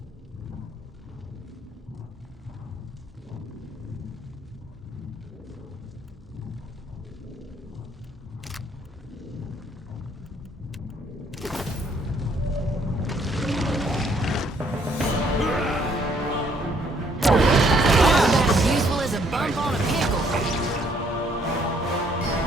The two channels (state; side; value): normal; both; correlation 0.66